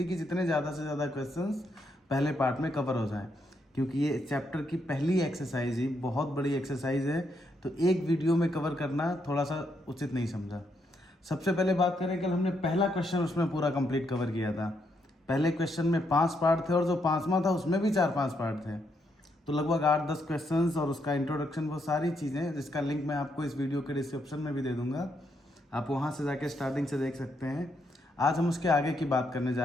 कि जितने ज़्यादा से ज़्यादा क्वेश्चंस पहले पार्ट में कवर हो जाएं, क्योंकि ये चैप्टर की पहली एक्सरसाइज ही बहुत बड़ी एक्सरसाइज है, तो एक वीडियो में कवर करना थोड़ा सा उचित नहीं समझा। सबसे पहले बात करें, कल हमने पहला क्वेश्चन उसमें पूरा कंप्लीट कवर किया था। पहले क्वेश्चन में 5 पार्ट थे और जो 5वां था उसमें भी 4-5 पार्ट थे, तो लगभग 8-10 क्वेश्चंस और उसका इंट्रोडक्शन, वो सारी चीज़ें जिसका लिंक मैं आपको इस वीडियो के डिस्क्रिप्शन में भी दे दूंगा, आप वहाँ से जाके स्टार्टिंग से देख सकते हैं। आज हम उसके आगे की बात करने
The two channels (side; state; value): both; normal; correlation 0.77